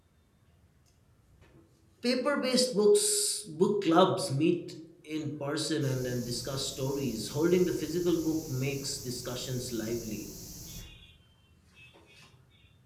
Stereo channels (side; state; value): both; identical; correlation 1.00